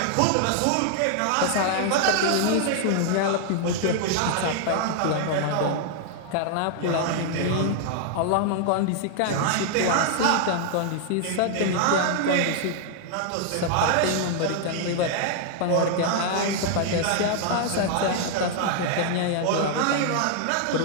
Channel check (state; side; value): different; both; correlation 0.00